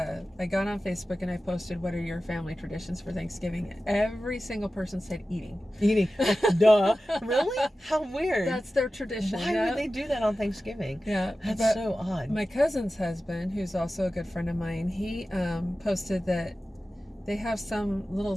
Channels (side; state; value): both; normal; correlation 0.94